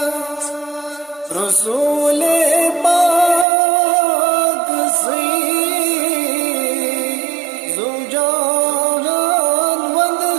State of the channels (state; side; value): drops out; left; at 3.5 s